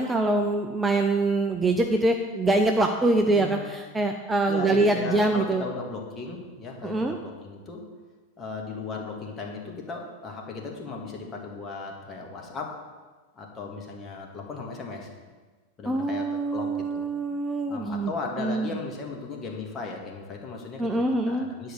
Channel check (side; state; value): both; normal; correlation 0.62